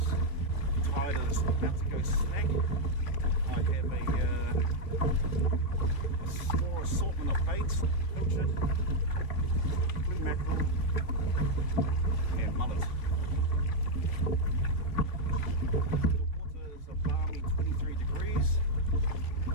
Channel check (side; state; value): right; late; 3.2 ms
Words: Tide is about to go smack. I have a small assortment of baits, pilchard, blue mackerel and mullet. The water is a balmy 23 degrees.